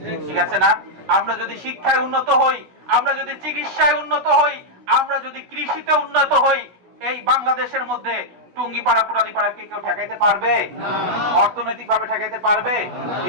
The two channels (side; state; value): left; late; 16 ms